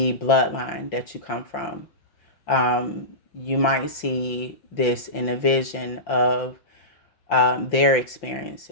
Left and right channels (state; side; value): late; right; 5.7 ms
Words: bloodline that you come from. You might see this in a vision of their